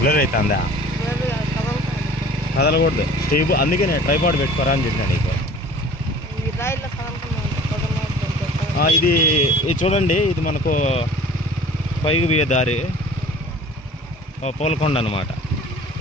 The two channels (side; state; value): both; normal; correlation 0.46